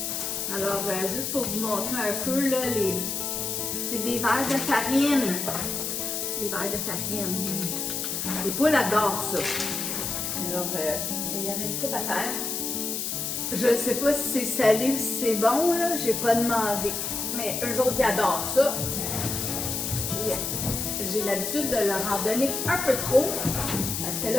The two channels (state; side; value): noise; left; hiss, 2 dB below the sound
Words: Alors, juste pour vous montrer un peu, là, c'est des verres de farine. Des verres de farine. Les poules adorent ça. Alors, il y en a une coupe à terre. Je ne sais pas si c'est salé ou si c'est bon, là. J'ai pas demandé. Mais eux autres, ils adorent ça. J'ai l'habitude de leur en donner un peu trop. Parce que